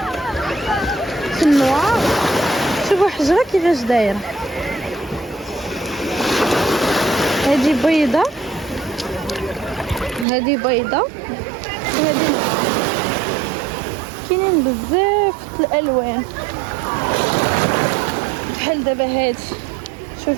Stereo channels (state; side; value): drops out; left; at 10.2 s